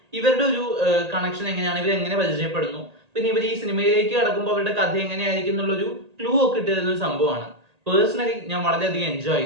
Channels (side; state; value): left; late; 1.8 ms